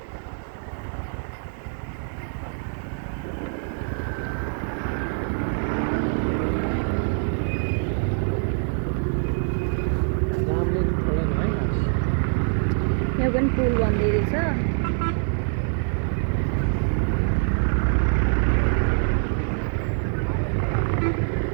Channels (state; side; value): silent; left; 57 dB below the other